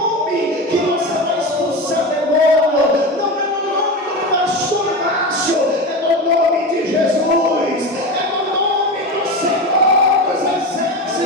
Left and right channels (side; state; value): both; normal; correlation 0.23